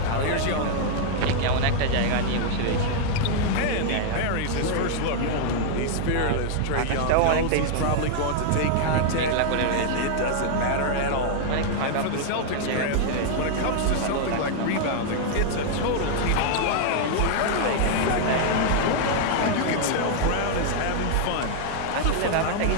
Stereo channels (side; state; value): both; different; correlation -0.01